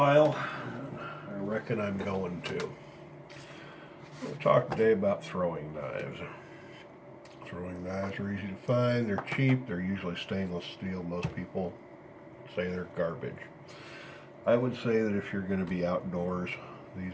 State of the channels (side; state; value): both; identical; correlation 1.00